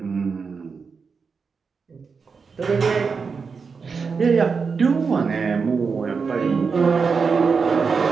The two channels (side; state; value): left; quieter; 5.3 dB